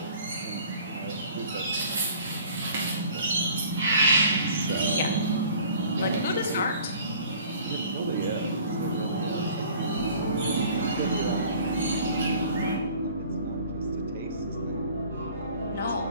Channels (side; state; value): both; inverted; correlation -0.50